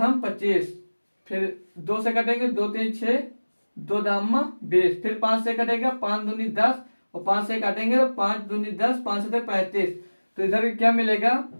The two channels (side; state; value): both; inverted; correlation -1.00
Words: 25, फिर 2 से कटेंगे, 2 3 6, 2 दाम 20, फिर 5 से कटेगा, 5 दूनी 10, और 5 से काटेंगे तो 5 दूनी 10, 5 से 35, तो इधर क्या मिलेगा